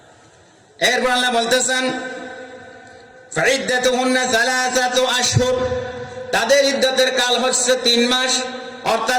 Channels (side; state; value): both; identical; correlation 1.00